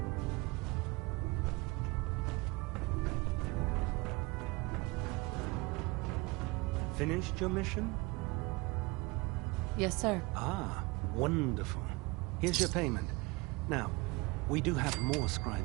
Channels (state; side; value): quieter; left; 24.9 dB